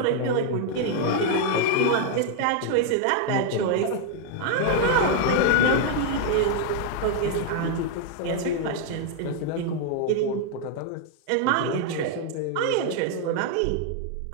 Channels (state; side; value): different; both; correlation 0.01